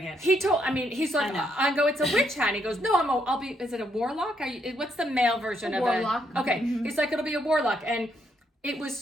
it. He's like, I know. I go, it's a witch hat. And he goes, no, I'll be, is it a warlock? What's the male version of warlock. it? Okay. He's like, it'll be a warlock. And it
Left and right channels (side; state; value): both; normal; correlation 0.75